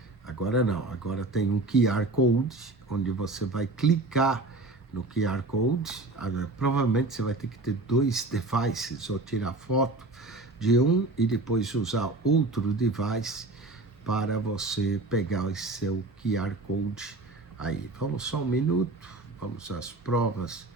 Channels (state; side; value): quieter; left; 3.1 dB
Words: não. Agora tem um QR Code, onde você vai clicar no QR Code. Provavelmente você vai ter que ter 2 devices, ou tirar foto de um e depois usar outro device para você pegar o seu QR Code aí. Vamos só um minuto, vamos às provas